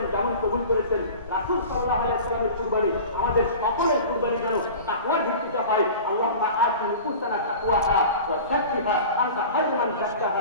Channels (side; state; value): both; inverted; correlation -0.38